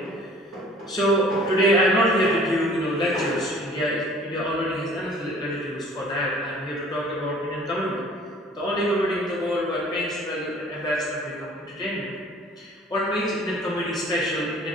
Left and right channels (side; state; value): both; normal; correlation 0.51